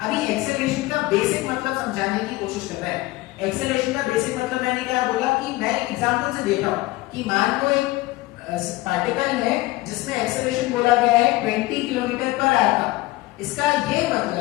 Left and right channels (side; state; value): right; quieter; 19.6 dB